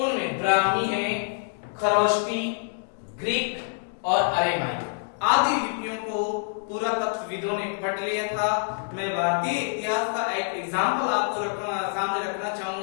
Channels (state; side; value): silent; right; digital silence